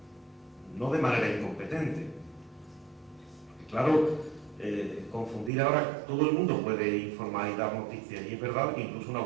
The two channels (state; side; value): drops out; left; at 5.5 s